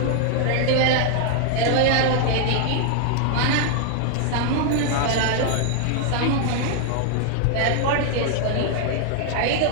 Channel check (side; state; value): both; different; correlation 0.00